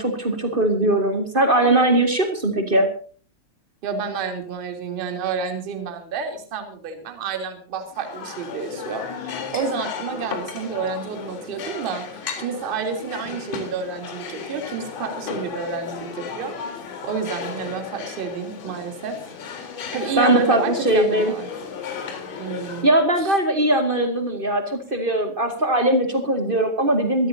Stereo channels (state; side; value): late; left; 2.5 ms